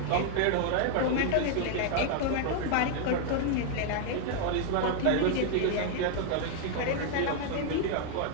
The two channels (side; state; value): both; different; correlation 0.00